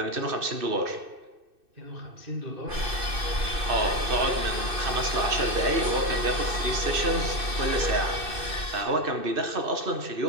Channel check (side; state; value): left; late; 2.6 ms